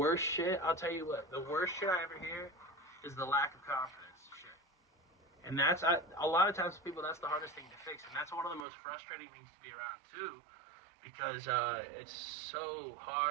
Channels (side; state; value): left; drops out; at 8.7 s